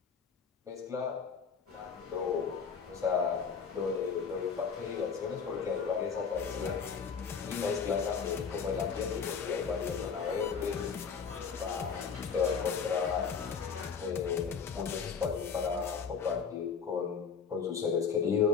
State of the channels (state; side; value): quieter; right; 6.1 dB